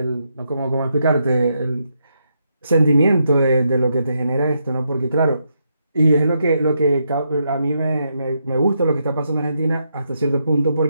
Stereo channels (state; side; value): inverted; both; correlation -0.80